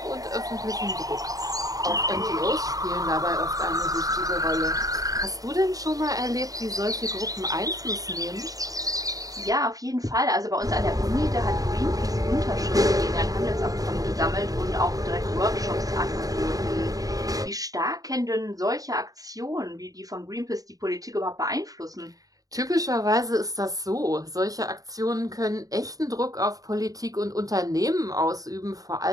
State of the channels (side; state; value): left; late; 0.17 ms